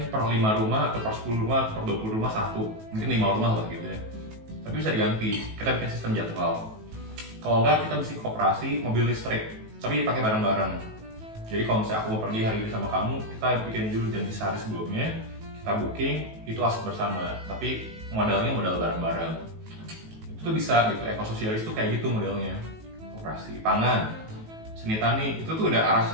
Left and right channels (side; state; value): left; late; 18 ms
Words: per 5 rumah atau per 10 rumah atau per 20 rumah satu. Mungkin 5 rumah lah gitu ya. Tapi bisa diganti. Kita bikin sistem jadwal. Kalau enggak kita bisa koperasi mobil listrik, tapi pakai bareng-bareng. Jadi kalau misalnya aku mau pergi hari ini sama kamu, kita bikin dulu janji sehari sebelumnya, kita booking, itu aset bersama. Tapi modalnya modal bareng-bareng. Itu tuh bisa gitu. Ekososialis tuh kayak gitu modelnya. Koperasi, pangan, seni tani, itu tuh udah arah